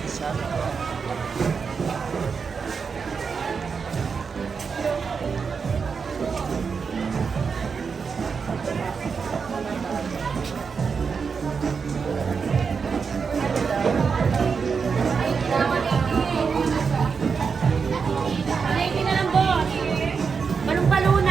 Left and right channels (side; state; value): left; quieter; 5.6 dB